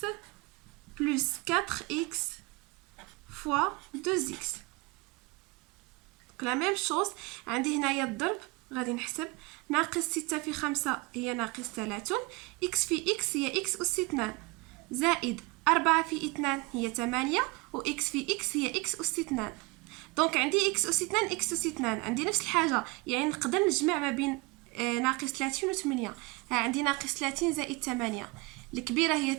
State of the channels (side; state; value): left; quieter; 26.1 dB